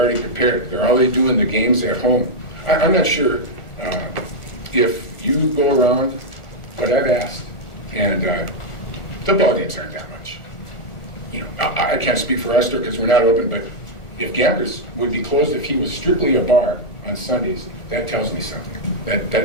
prepared? They're already doing the games at home. I'm not sure if you go around what I've asked, and the ball games aren't that much. I can't speak for our store because we're not open, but if Gamblers would be closed if he was strictly a bar on Sundays, that tells me something.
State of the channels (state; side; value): late; right; 1.4 ms